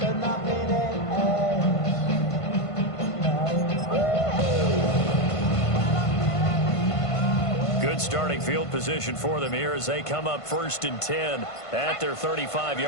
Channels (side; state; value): right; late; 1.5 ms